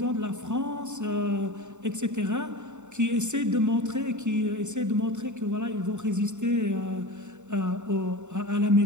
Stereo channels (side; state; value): left; late; 0.84 ms